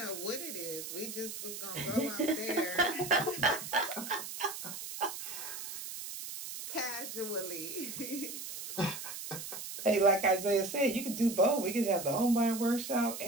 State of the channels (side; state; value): right; noise; hiss, 8 dB below the sound